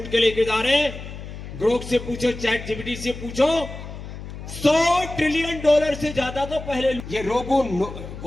के लेके जा रहे हैं। ग्रोक से पूछो, चैट जीपीटी से पूछो, $100 ट्रिलियन से ज्यादा तो पहले ये रोगों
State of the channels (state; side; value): noise; left; hum, 11 dB below the sound